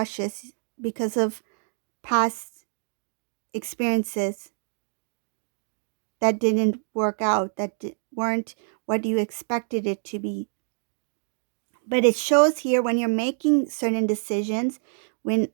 because of past experiences that didn't work out, that weren't what you expected it to be. But it shows here when you're making certain decisions, when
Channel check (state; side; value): silent; left; digital silence